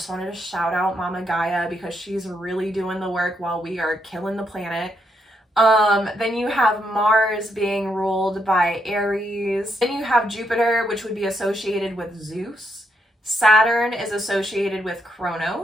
wanted to shout out Mama Gaia because she's really doing the work while we are killing the planet. Then you have Mars being ruled by Aries. Then you have Jupiter, which would be associated with Zeus. Saturn is associated with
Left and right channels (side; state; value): both; normal; correlation 0.78